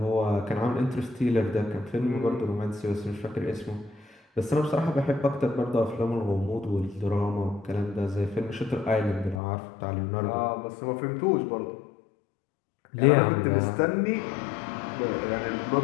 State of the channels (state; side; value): drops out; right; at 9.3 s